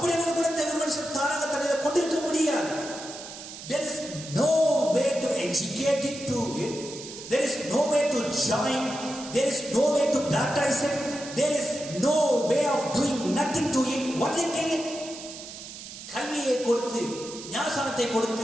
ஒரு குணத்தை ஒரு மனுஷன் தானாக தன்னில் கொண்டிருக்க முடியாது. There is no way to educate it to it. There is no way to join. There is no way to baptize it. There is no way of doing nothing to it. What they kill it? கல்வியை கொடுத்து, ஞானசானத்தை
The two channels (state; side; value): noise; right; hiss, 12 dB below the sound